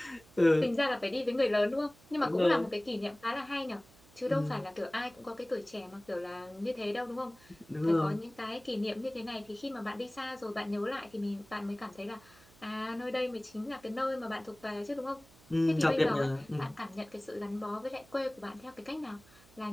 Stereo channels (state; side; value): noise; right; hum, 26 dB below the sound